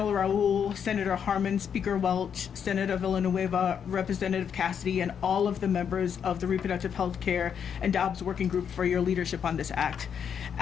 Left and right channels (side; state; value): right; quieter; 7.7 dB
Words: Raul, Senator Harman, Speaker Welch, Senator Villanueva, Representative Cassidy, and all of the members of the Reproductive Health Care and Dobbs Working Group for your leadership on this act.